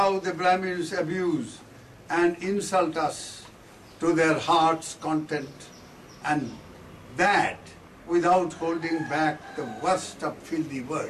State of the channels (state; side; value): identical; both; correlation 1.00